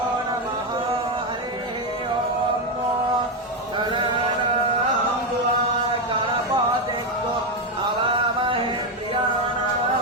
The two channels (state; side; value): normal; both; correlation 0.07